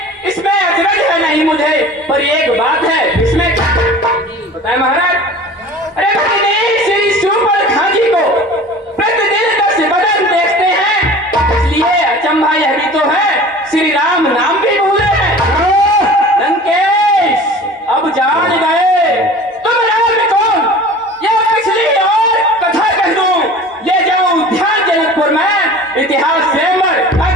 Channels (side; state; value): both; normal; correlation 0.41